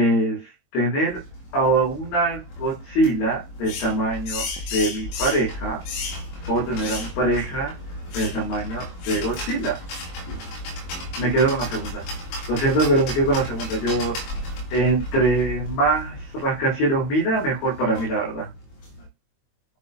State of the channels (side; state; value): right; late; 22 ms